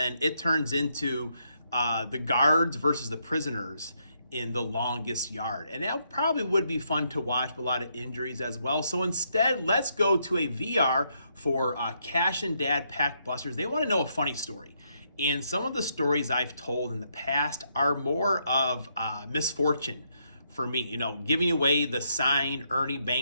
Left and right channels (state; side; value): inverted; both; correlation -0.76